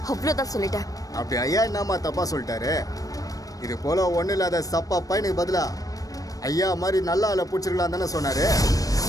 அவ்வளவுதான் சொல்லிட்டேன். அப்படி ஐயா என்னம்மா தப்பா சொல்லிட்டாரு? இது போல ஒண்ணு இல்லாத சப்பா பையனுக்கு பதிலா ஐயா மாதிரி நல்ல ஆளை பிடிச்சிருக்கலாம் தானே சொன்னாரு.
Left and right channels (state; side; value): late; right; 0.17 ms